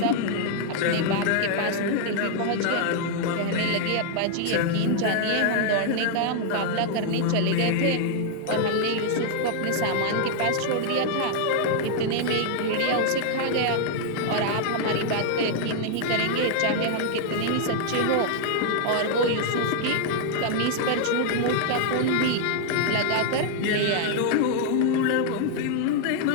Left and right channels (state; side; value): different; both; correlation 0.00